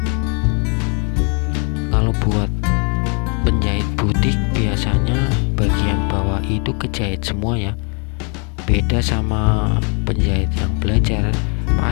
Kalau buat penjahit butik biasanya bagian bawah itu kejahit semua ya, beda sama penjahit yang belajar.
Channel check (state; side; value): quieter; right; 36.1 dB